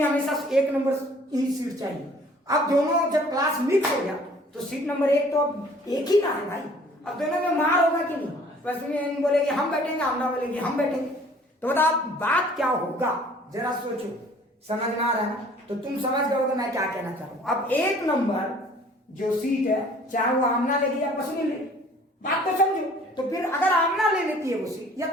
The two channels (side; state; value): both; normal; correlation 0.54